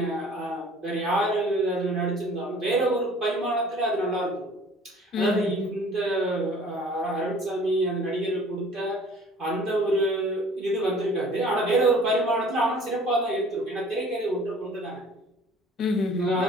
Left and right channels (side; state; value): both; normal; correlation 0.50